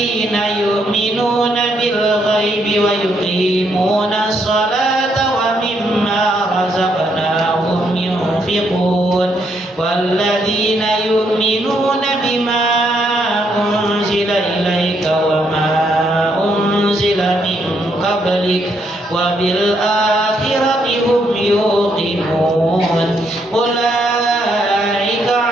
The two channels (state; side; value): normal; both; correlation 0.75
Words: يؤمنون بالغيب ويقيمون الصلاة ومما رزقناهم ينفقون والذين يؤمنون بما أنزل إليك وما أنزل من قبلك وبالآخرة هم يوقنون. أولئك